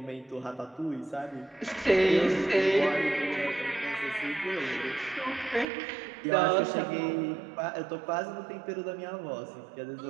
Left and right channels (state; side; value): drops out; left; at 5.7 s